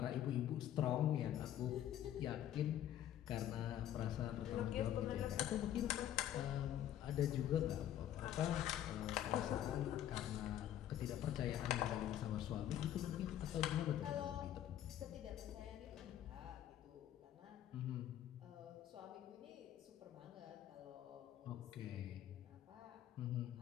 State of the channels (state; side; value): quieter; right; 11.5 dB